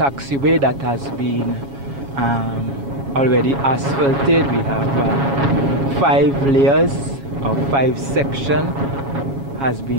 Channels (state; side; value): late; left; 7.2 ms